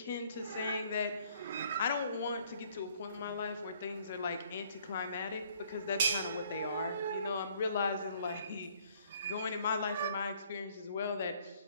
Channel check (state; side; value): inverted; both; correlation -0.62